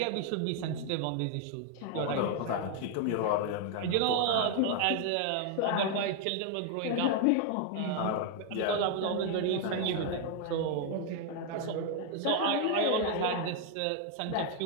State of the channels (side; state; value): both; different; correlation 0.00